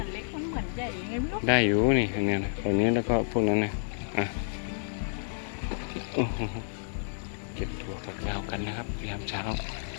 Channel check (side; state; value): right; silent; digital silence